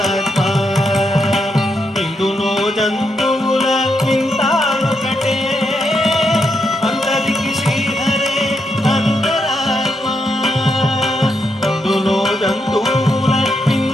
ఇందులో జంతువుల వింతానొకటే అందరికి శ్రీహరే అంతరాత్మ ఇందులో జంతువుల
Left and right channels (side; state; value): both; normal; correlation 0.81